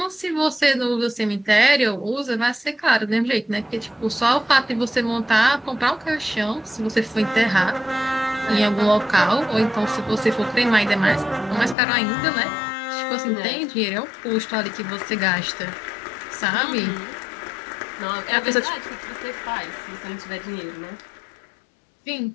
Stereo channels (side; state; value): right; drops out; at 11.8 s